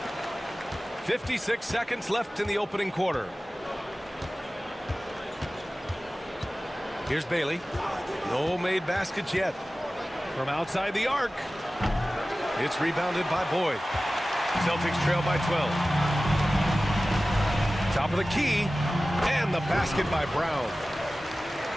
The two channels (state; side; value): normal; both; correlation 0.96